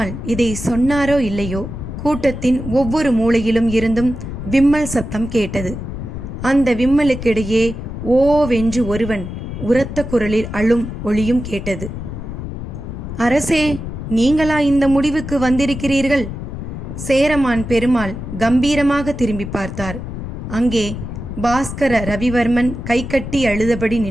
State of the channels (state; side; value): noise; left; rumble, 8 dB below the sound